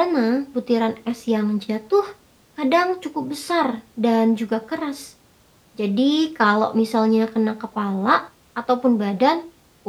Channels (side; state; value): both; identical; correlation 1.00